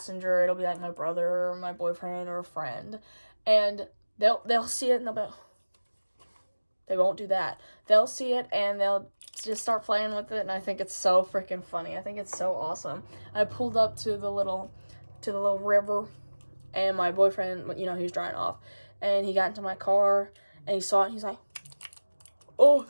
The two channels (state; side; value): inverted; both; correlation -1.00